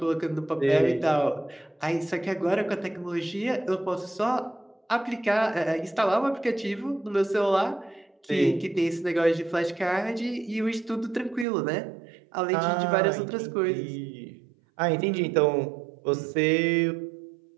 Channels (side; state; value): left; drops out; at 11.5 s